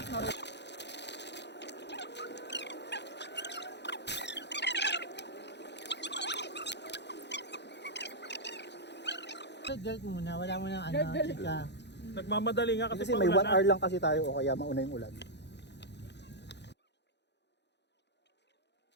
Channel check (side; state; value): right; late; 0.50 ms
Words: naroon. Dirt muna, wala mo nang ano, chika. Nagmamadali nga kasi, Kasi may 1 hour lang kasi tayo o kaya mauna yung ulan.